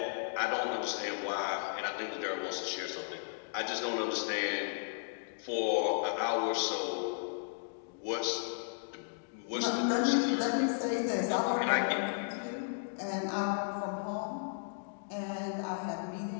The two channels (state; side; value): silent; right; digital silence